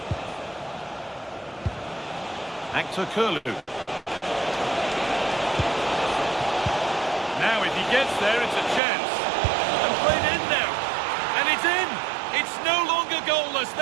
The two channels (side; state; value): left; drops out; at 8.8 s